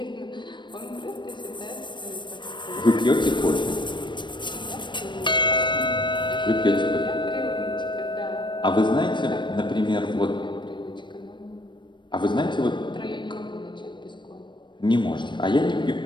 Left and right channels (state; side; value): late; right; 0.22 ms